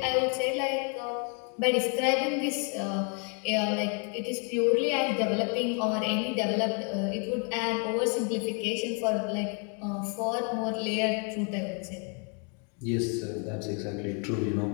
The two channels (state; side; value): quieter; right; 38.8 dB